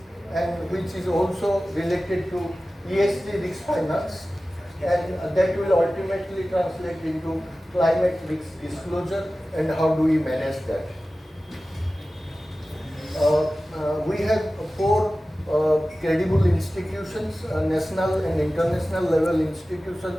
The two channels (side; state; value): both; normal; correlation 0.96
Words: and which is also related to ESG risk finance, and that will ultimately translate into climate risk disclosure and how do we manage that. We have four credible institutions, national and international level institutions